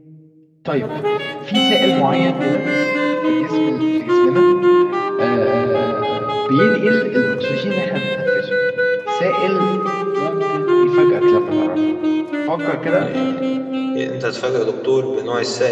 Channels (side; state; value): both; identical; correlation 1.00